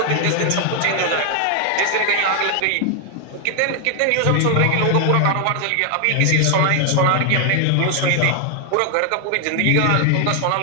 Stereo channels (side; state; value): both; different; correlation 0.00